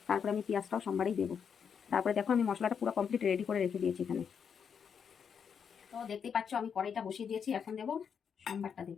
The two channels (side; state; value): right; quieter; 7.0 dB